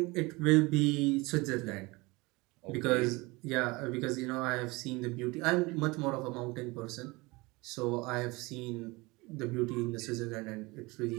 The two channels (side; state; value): left; quieter; 24.0 dB